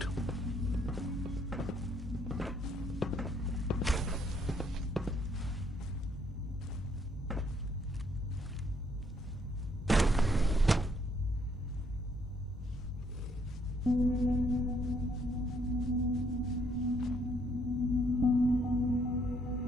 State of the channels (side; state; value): both; normal; correlation 0.69